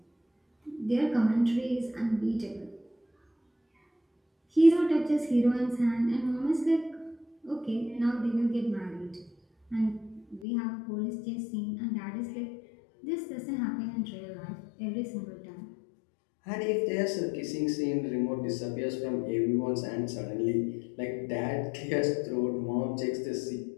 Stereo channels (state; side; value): drops out; right; at 10.5 s